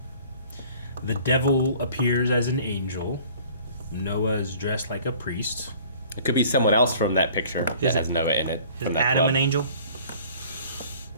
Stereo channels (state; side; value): inverted; both; correlation -0.51